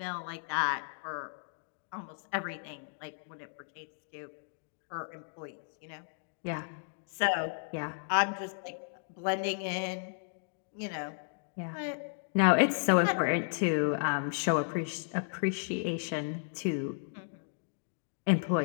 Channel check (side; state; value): right; silent; digital silence